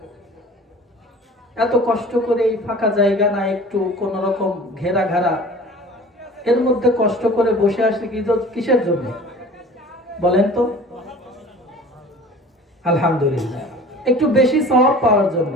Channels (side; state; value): both; normal; correlation 0.43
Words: এত কষ্ট করে এই ফাঁকা জায়গা না একটু কোন রকম ঘেরা ঘেরা, এর মধ্যে কষ্ট করে বসে আসি কিসের জন্য বলেন তো? আলহামদুলিল্লাহ, একটু বেশি সওয়াব পাওয়ার জন্য।